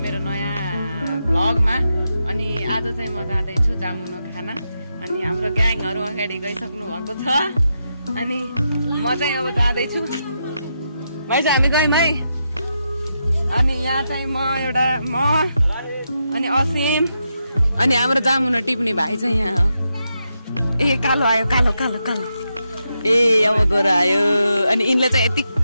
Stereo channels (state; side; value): inverted; both; correlation -0.85